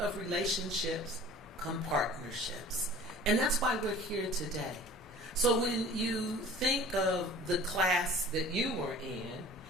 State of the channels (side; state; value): both; normal; correlation 0.44